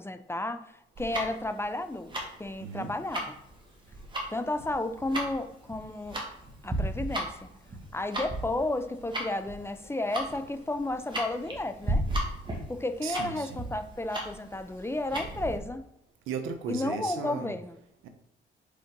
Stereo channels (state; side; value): normal; both; correlation 0.67